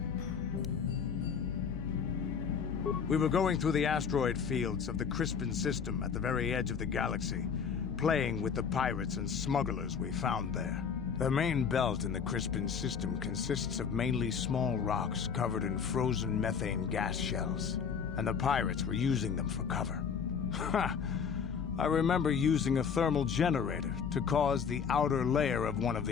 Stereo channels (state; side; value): quieter; right; 6.6 dB